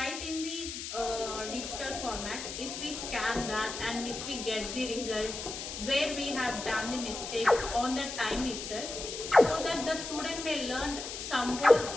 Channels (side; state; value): left; noise; hiss, 7 dB below the sound